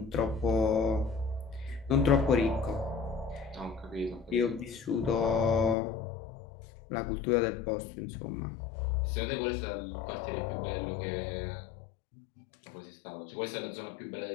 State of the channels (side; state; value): right; drops out; at 5.8 s